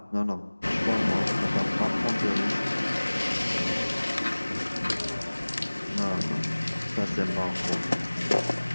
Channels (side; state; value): both; inverted; correlation -1.00